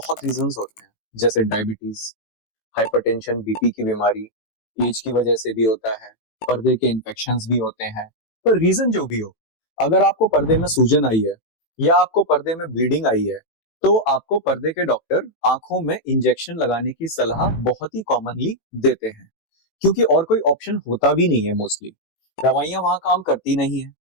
रीजंस होते हैं, जैसे डायबिटीज, हाइपरटेंशन, बीपी की बीमारी, एज की वजह से भी होता है, पर्दे के इन्फेक्शंस भी होते हैं। पर रीजन जो भी हो, अगर आपको पर्दे में सूजन आई है या आपको पर्दे में ब्लीडिंग आई है, तो आपको पर्दे के डॉक्टर आंखों में इंजेक्शन लगाने की सलाह बहुत ही कॉमनली देते हैं, क्योंकि और कोई ऑप्शन होता भी नहीं है। मोस्टली दवाइयां वहां काम करती नहीं है,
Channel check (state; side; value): late; right; 18 ms